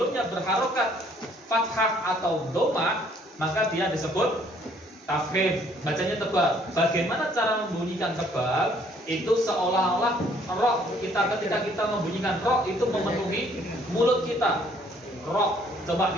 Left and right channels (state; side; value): normal; both; correlation 0.62